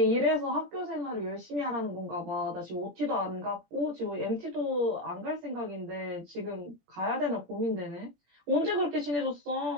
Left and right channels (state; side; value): late; left; 17 ms